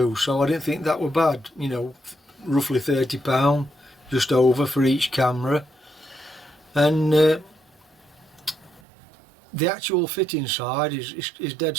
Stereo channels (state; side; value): drops out; left; at 8.8 s